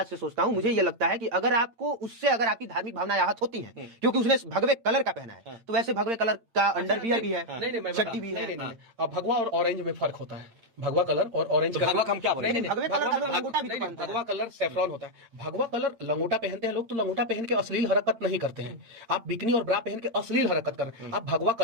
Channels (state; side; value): late; left; 8.8 ms